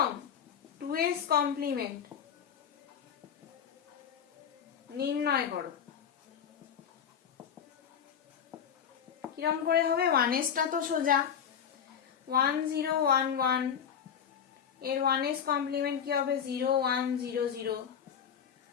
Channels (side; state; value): right; quieter; 8.1 dB